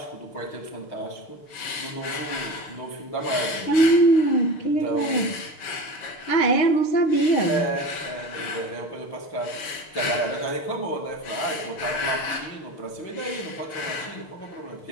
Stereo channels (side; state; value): right; late; 6.5 ms